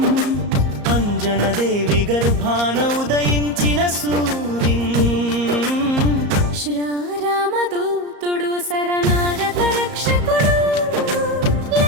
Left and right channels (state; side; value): late; left; 34 ms